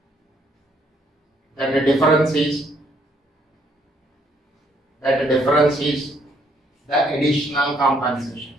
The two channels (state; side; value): normal; both; correlation 0.68